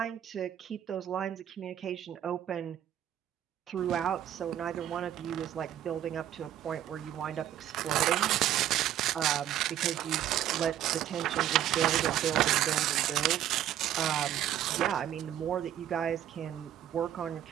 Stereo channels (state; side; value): quieter; left; 11.3 dB